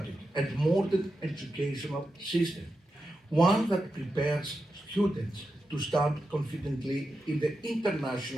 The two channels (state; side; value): normal; both; correlation 0.89